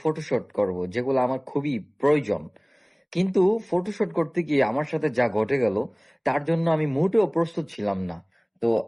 ফটোশুট করব, যেগুলো আমার খুবই প্রয়োজন। কিন্তু ফটোশুট করতে গিয়ে আমার সাথে যা ঘটে গেল, তার জন্য আমি মোটেও প্রস্তুত ছিলাম না। তো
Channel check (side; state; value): both; identical; correlation 1.00